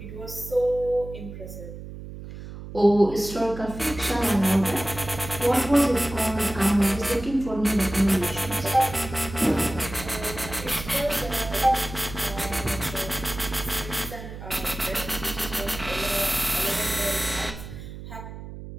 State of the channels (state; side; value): noise; right; hum, 12 dB below the sound